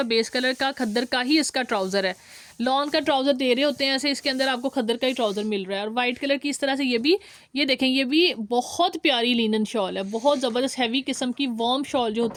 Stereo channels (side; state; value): both; identical; correlation 1.00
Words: बेस कलर का खद्दर का ही इसका ट्राउज़र है, लॉन का ट्राउज़र दे रहे होते हैं ऐसे, इसके अंदर आपको खद्दर का ही ट्राउज़र मिल रहा है। और वाइट कलर की इस तरह से ये देखें, ये भी बहुत प्यारी लिनन शॉल है, बहुत ज़बरदस्त हैवी किस्म की वार्म शॉल जो